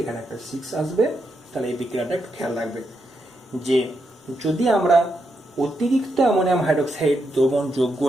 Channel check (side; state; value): both; normal; correlation 0.82